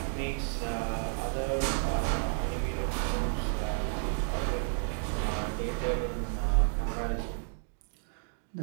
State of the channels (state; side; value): silent; left; 57 dB below the other